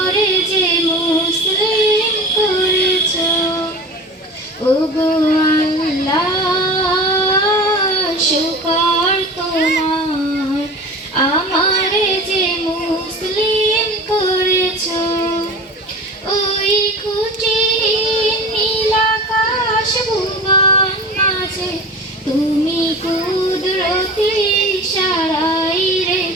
যে মুসলিম করেছো। ওগো আল্লাহ শুকর তোমার, আমারে যে মুসলিম করেছো। ওই খুঁটিহীন নীল আকাশ ভুবন মাঝে তুমি কুদরতি ইশারায়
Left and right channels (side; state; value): both; normal; correlation 0.34